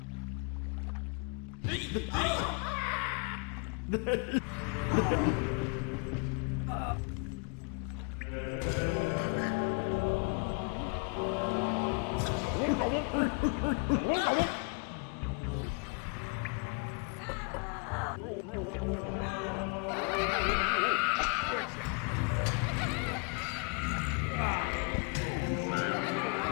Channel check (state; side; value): quieter; right; 37.2 dB